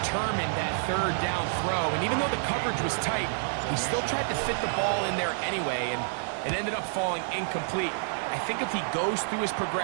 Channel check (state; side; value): silent; left; digital silence